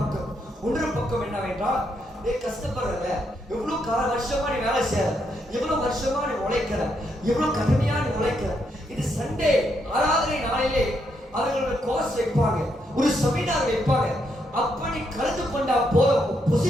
இன்னொரு பக்கம் என்னவென்றால், நீ கஷ்டப்படுறத எவ்வளவு வருஷமா நீ வேலை செய்யற, எவ்வளவு வருஷமா நீ உழைக்கிற, எவ்வளவு கடுமையா நீ உழைக்கிற, இது சண்டே ஆராதனை நாளிலே அவர்களோட கோர்ஸ் வைப்பாங்க, ஒரு செமினார் வைப்பாங்க. அப்படி கலந்து கொண்டா போதும்,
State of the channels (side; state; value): both; normal; correlation 0.78